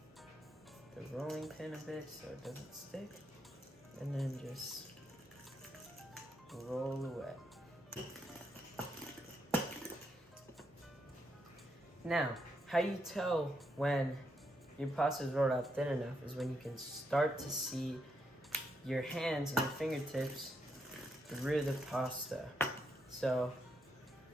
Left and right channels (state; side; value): normal; both; correlation 0.80